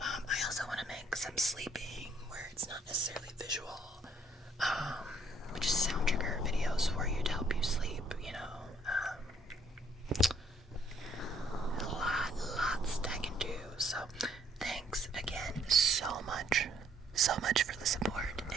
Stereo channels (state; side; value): normal; both; correlation 0.65